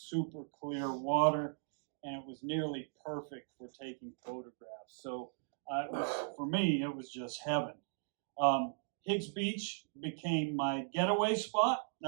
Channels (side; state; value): left; silent; digital silence